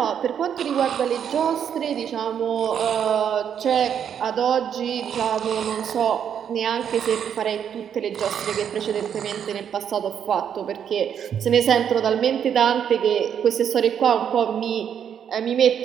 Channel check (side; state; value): left; quieter; 8.5 dB